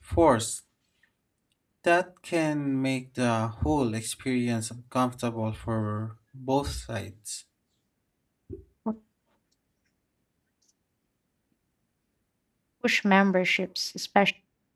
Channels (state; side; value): identical; both; correlation 1.00